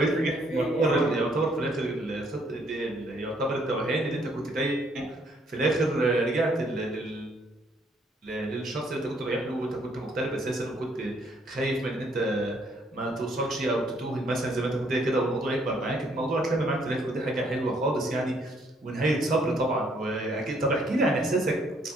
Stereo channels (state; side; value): normal; both; correlation 0.67